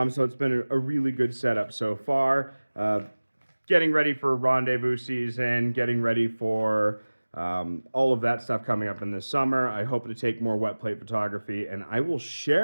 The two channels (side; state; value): both; inverted; correlation -1.00